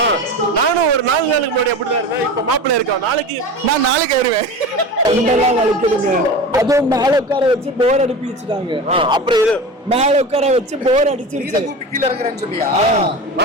நானும் ஒரு 4 நாளுக்கு முன்னாடி அப்படிதான் இருந்தேன். இப்ப மாப்பிள்ளை இருக்கா, நாளைக்கு வருவேன். தொண்டெல்லாம் வலிக்குதுங்க. அதுவும் மேல உட்கார வச்சு போர் அடிப்பி வச்சுட்டாங்க. அப்புறம் இது மேல உட்கார வச்சு போர் அடிச்சிருச்சு. கீழே இருக்கிறேன்னு சொல்லியா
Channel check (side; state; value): both; normal; correlation 0.30